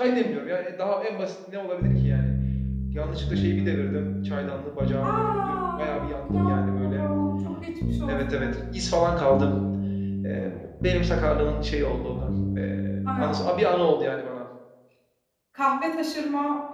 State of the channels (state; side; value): identical; both; correlation 1.00